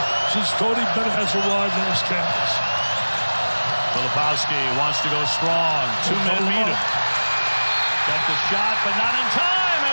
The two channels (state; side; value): inverted; both; correlation -1.00